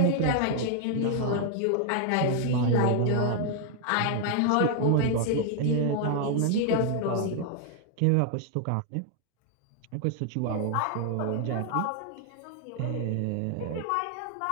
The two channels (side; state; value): both; different; correlation 0.00